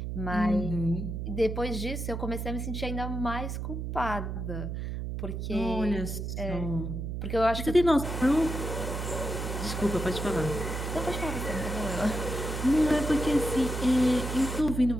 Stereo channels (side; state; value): right; noise; hum, 4 dB below the sound